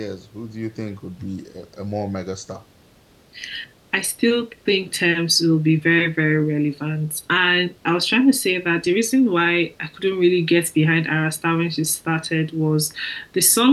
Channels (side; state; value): both; identical; correlation 1.00